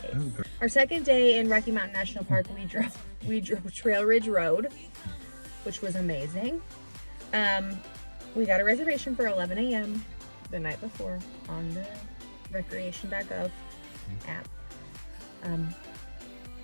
Our second day in Rocky Mountain National Park, we drove Trail Ridge Road, which was amazing. We got a reservation for 11 a.m. the night before on the recreation.gov app.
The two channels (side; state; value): both; inverted; correlation -1.00